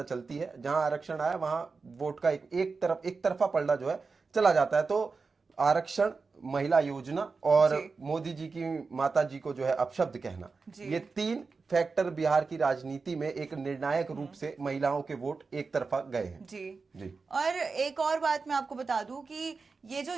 चलती है, जहां आरक्षण आया वहां वोट का एक तरफा पलड़ा जो है चला जाता है। तो आरक्षण, महिला योजना और मोदी जी की माता जी को जो है अपशब्द कहना, ये तीन फैक्टर बिहार की राजनीति में एक निर्णायक रूप से महिलाओं के वोट एक तरफा गए हैं। जी। और एक और बात मैं आपको बता दूं कि ये जो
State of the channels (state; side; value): quieter; left; 4.5 dB